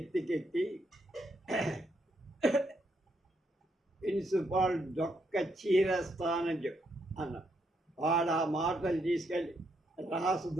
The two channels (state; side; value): normal; both; correlation 0.77